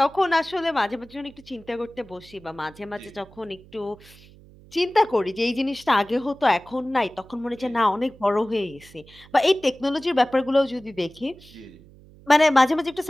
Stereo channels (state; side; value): noise; right; hum, 23 dB below the sound